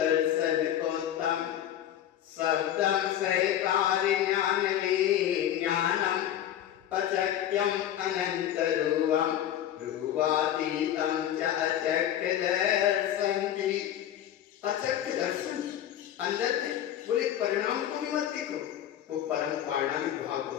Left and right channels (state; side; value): quieter; right; 11.2 dB